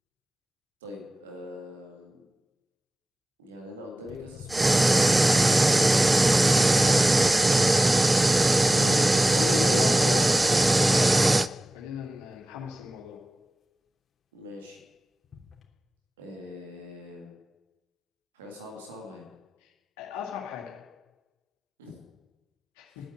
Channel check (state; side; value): normal; both; correlation 0.96